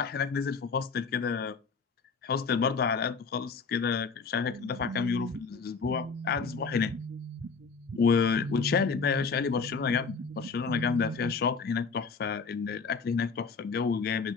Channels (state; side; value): quieter; right; 5.0 dB